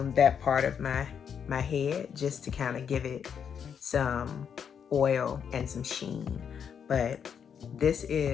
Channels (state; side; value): quieter; right; 7.6 dB